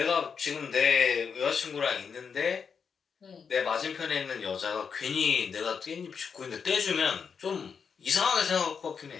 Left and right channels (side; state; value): right; quieter; 6.2 dB